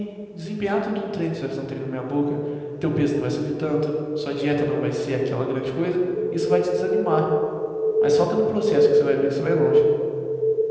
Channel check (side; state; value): both; identical; correlation 1.00